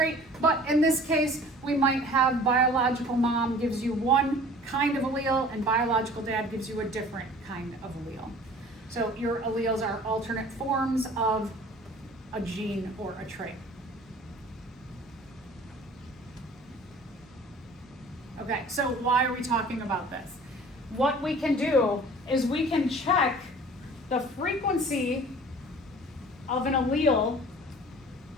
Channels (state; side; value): normal; both; correlation 0.47